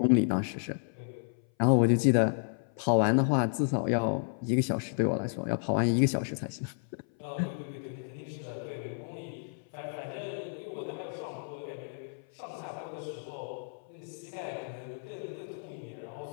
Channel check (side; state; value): right; silent; 57 dB below the other